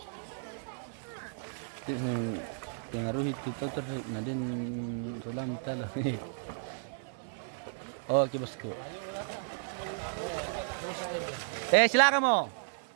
Pengaruh itu nadin sulam tala. Oke bosku. Silakan mo.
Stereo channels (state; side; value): silent; left; 55 dB below the other